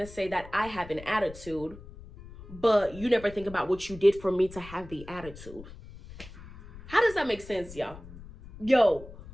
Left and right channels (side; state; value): left; noise; rumble, 16 dB below the sound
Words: to say that I have an attitude, but you never think about what you did for me to have the attitude? How does that make sense, y'all? Yo,